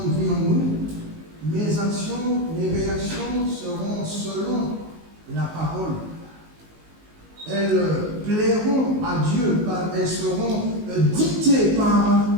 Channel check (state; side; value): late; left; 19 ms